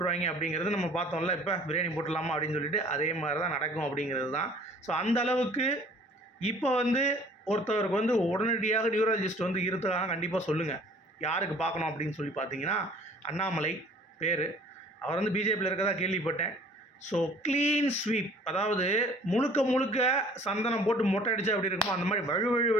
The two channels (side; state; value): both; normal; correlation 0.52